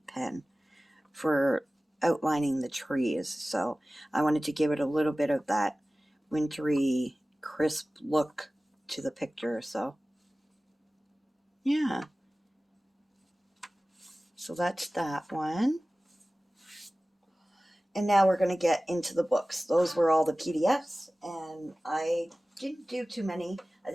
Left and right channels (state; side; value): normal; both; correlation 0.97